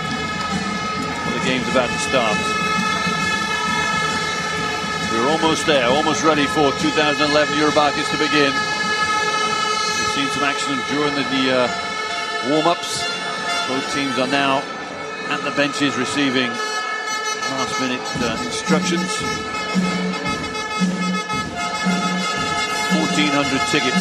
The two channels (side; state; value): both; identical; correlation 1.00